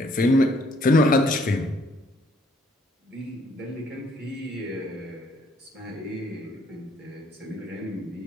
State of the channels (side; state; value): both; normal; correlation 0.65